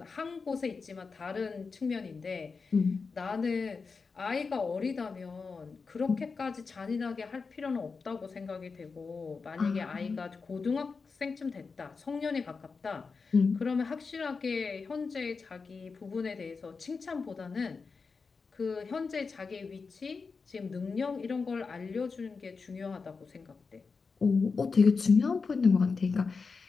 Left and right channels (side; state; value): right; quieter; 4.8 dB